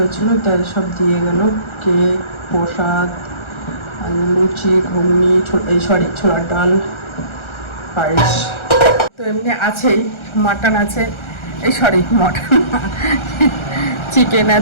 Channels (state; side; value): late; right; 1.3 ms